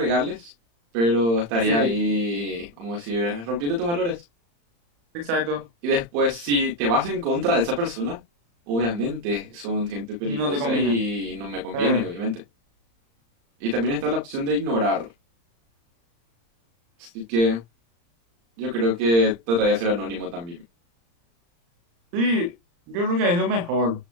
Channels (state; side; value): late; left; 35 ms